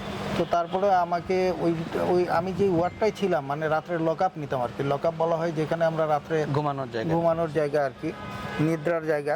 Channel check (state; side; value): identical; both; correlation 1.00